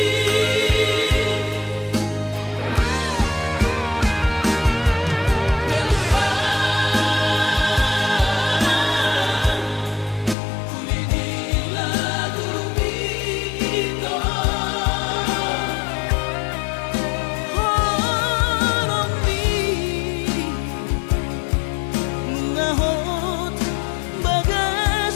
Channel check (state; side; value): drops out; right; at 10.4 s